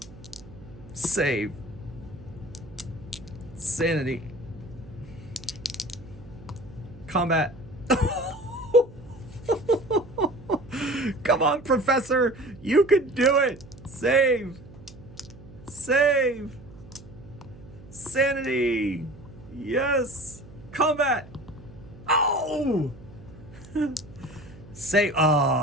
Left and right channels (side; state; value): right; noise; hum, 19 dB below the sound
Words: Save. Sanity. Combat. Come on, Professor. You can do it. Save. Save. Sanity. Yes. Combat. Oh. Save.